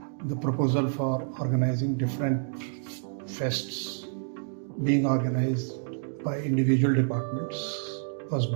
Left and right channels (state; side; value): silent; left; digital silence